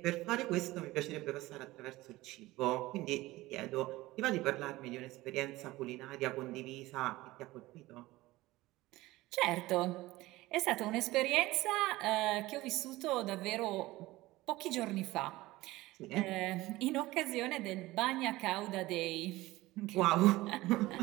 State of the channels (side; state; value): left; quieter; 18.6 dB